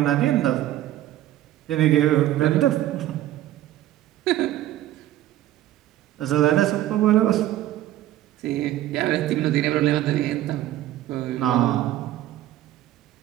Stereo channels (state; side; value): quieter; left; 13.8 dB